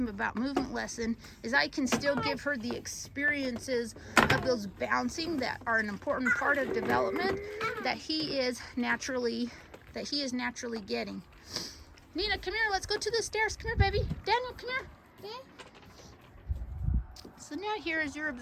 about movement lesson is I can still give her the experiences of those bouncing that are an important part of development that he is naturally getting. Nina, come here, let's go to the stairs. Come here, baby. Daniel, come here. Okay. So now here, as you're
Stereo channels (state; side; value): identical; both; correlation 1.00